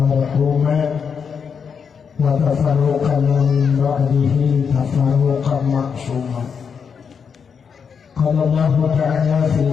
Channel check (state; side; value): quieter; right; 6.5 dB